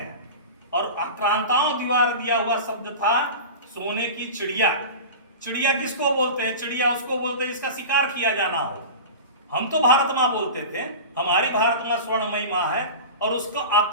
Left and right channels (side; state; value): both; inverted; correlation -0.31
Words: और आक्रांताओं द्वारा दिया हुआ शब्द था सोने की चिड़िया। चिड़िया किसको बोलते हैं? चिड़िया उसको बोलते हैं जिसका शिकार किया जाना हो। हम तो भारत मां बोलते थे, हमारी भारत मां स्वर्णमयी मां है, और उसको